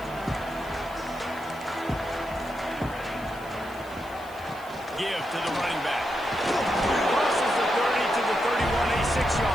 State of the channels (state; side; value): noise; left; hiss, 23 dB below the sound